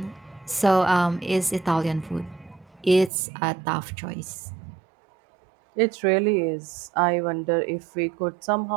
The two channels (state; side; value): drops out; left; at 3.1 s